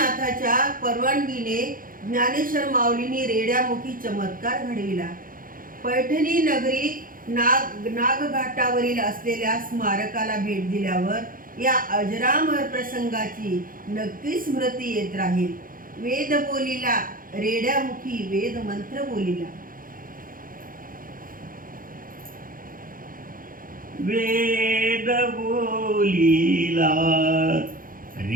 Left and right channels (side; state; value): left; late; 0.40 ms